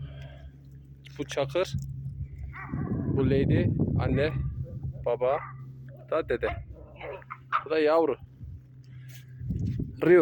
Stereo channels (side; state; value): both; identical; correlation 1.00